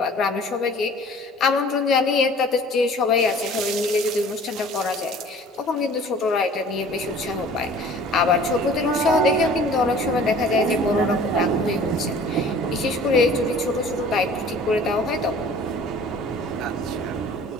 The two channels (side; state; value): both; normal; correlation 0.48